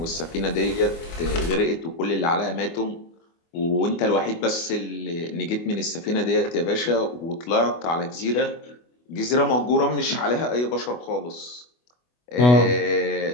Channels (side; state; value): right; late; 24 ms